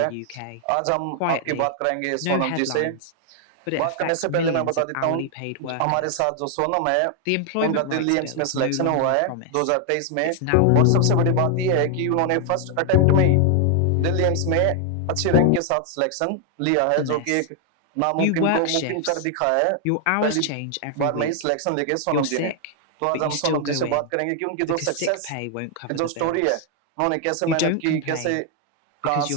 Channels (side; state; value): both; different; correlation 0.00